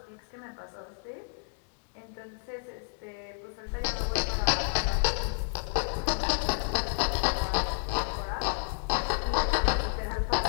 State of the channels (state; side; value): silent; right; digital silence